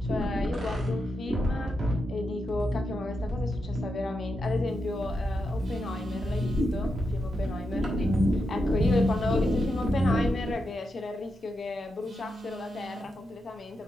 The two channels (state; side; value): normal; both; correlation 0.86